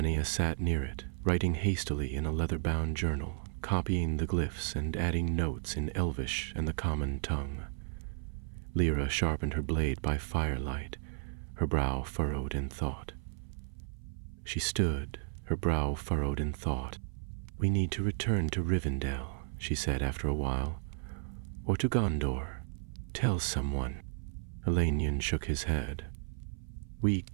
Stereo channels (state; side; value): silent; left; 55 dB below the other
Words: sat near it, writing hastily in a leather-bound journal, copying the glyphs and adding notes in Elvish and the common tongue. Lyra sharpened her blade by firelight, her brow furrowed in thought. She stood, her brow furrowed in thought. "We need to return to Rivendell," she said after a while. "Or to Gondor. Tell someone." Elenian shook his head. "We